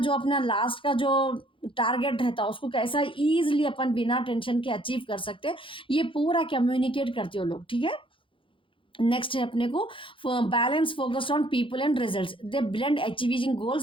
लास्ट का जो टारगेट रहता है उसको कैसा इजीली अपन बिना टेंशन के अचीव कर सकते हैं, ये पूरा कम्युनिकेट करते हो लोग, ठीक है। नेक्स्ट है अपने को balance focused on people and results. They blend achieving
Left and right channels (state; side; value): late; right; 0.25 ms